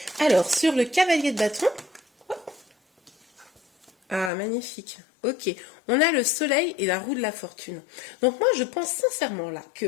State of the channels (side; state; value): right; drops out; at 4.3 s